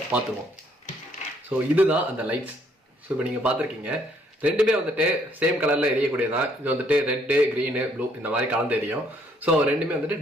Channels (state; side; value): normal; both; correlation 0.67